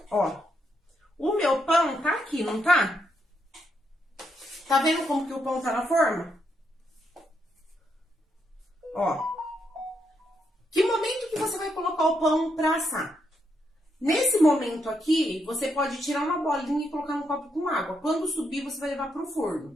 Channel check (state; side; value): normal; both; correlation 0.79